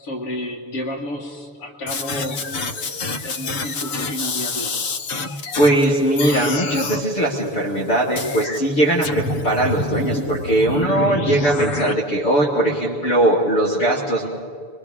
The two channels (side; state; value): right; late; 6.9 ms